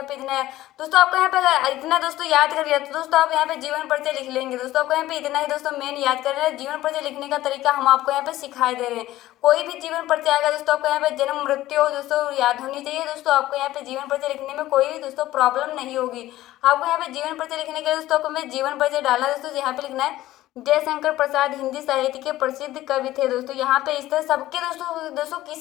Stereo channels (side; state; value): right; quieter; 15.4 dB